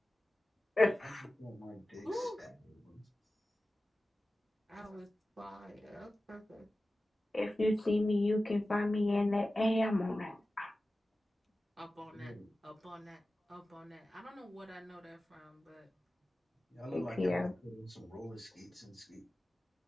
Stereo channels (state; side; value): normal; both; correlation 0.95